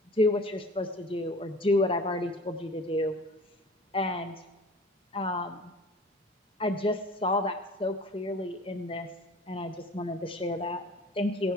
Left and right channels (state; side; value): normal; both; correlation 0.43